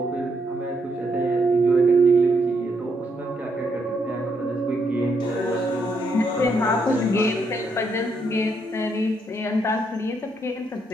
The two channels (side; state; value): both; normal; correlation 0.77